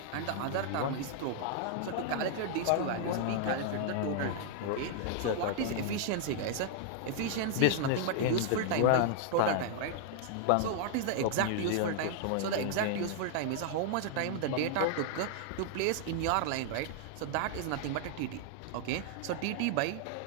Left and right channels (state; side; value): different; both; correlation -0.01